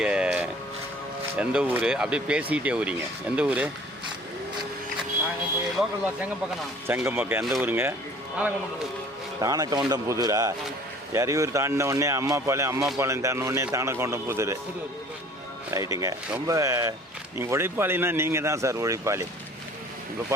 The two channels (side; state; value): both; normal; correlation 0.50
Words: எந்த ஊர்? அப்படியே பேசிக்கிட்டே ஊரிங்க. எந்த ஊர்? செங்கம்பக்கம். எந்த ஊருங்க? தானக்கவுண்டம் புதூரா? எறையூர் தாண்டின உடனே அம்மாபாளையம் தாண்டின உடனே தானக்கவுண்டம் புதூர். ரைட்டுங்க. ரொம்ப நீங்கள் உழைப்பாளின்னா நீங்கள் தான் சார் உழைப்பாளி. இப்போ